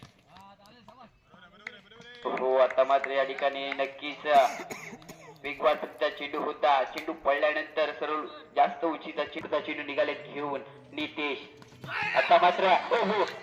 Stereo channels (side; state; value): both; identical; correlation 1.00